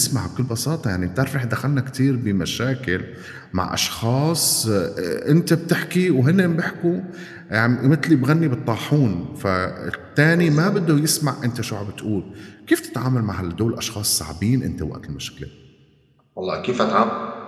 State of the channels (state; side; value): identical; both; correlation 1.00